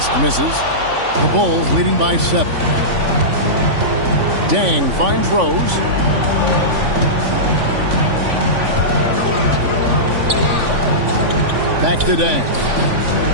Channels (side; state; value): left; late; 3.5 ms